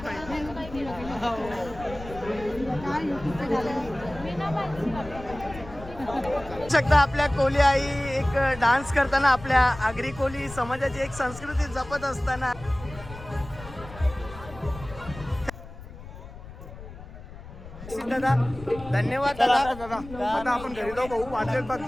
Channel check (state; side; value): noise; left; rumble, 14 dB below the sound